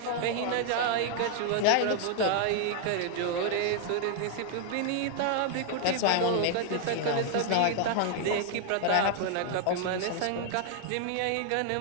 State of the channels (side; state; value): both; different; correlation 0.00